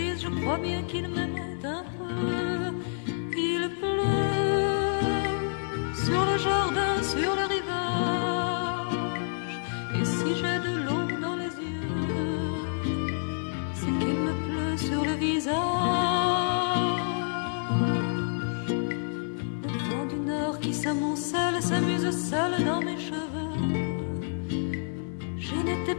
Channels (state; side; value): silent; right; 57 dB below the other